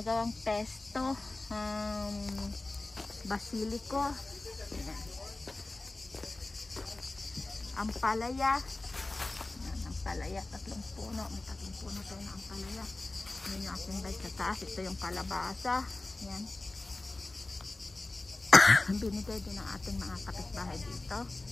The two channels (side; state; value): right; quieter; 3.0 dB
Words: pesto. Basilico. Ayan. Ampalaya. Ayan, ampalaya, tatlong puno. May tatlong puno tayo na ampalaya. Ayan yung ating bike sa taas. Ito yung kalabasa. Ayan. Binigay din ng ating mga kapitbahay dito